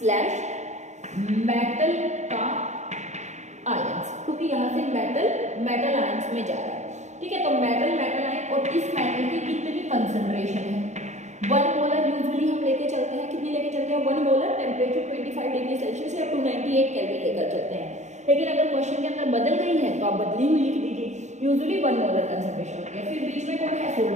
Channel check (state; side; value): late; left; 0.34 ms